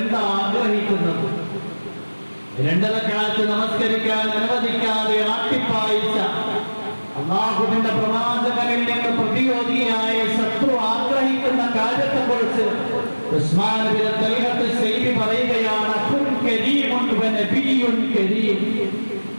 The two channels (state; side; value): inverted; both; correlation -1.00